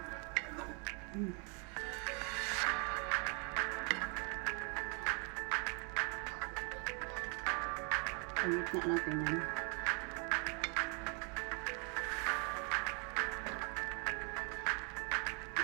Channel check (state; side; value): quieter; left; 35.7 dB